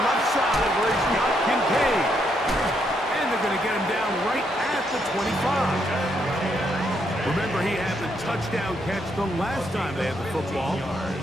left side where he's got Kincaid. And they're going to get him down right at the 25. Remember, he had the touchdown catch the last time they had the football.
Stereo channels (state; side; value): normal; both; correlation 0.76